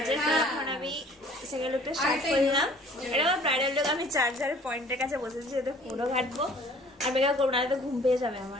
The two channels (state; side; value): normal; both; correlation 0.52